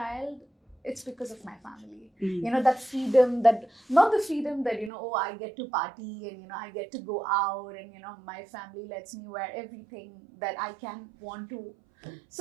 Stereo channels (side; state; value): left; drops out; at 4.9 s